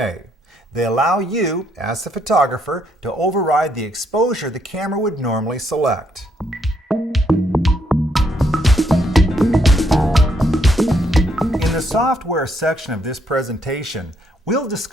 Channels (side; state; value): both; normal; correlation 0.73